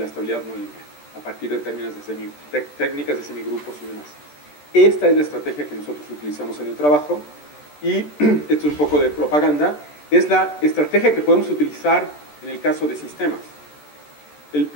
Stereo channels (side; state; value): right; late; 14 ms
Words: estabilidad no lineal a partir de técnicas de semigrupos y demás. Esta es la estrategia que nosotros utilizamos en el trabajo, y esto es un poco de propaganda. Es la estrategia que podemos utilizar en el caso de sistemas. El